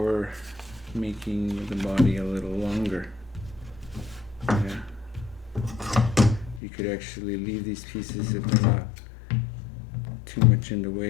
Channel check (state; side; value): drops out; right; at 6.6 s